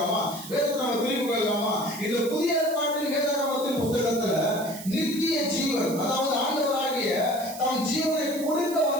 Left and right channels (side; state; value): right; noise; hiss, 13 dB below the sound